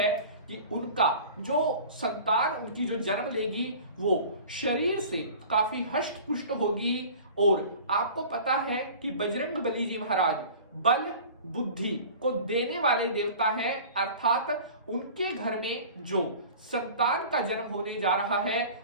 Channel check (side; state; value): both; inverted; correlation -0.41